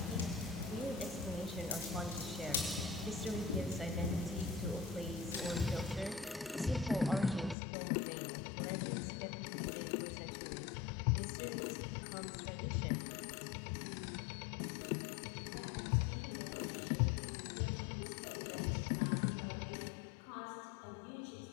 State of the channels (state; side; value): drops out; right; at 7.6 s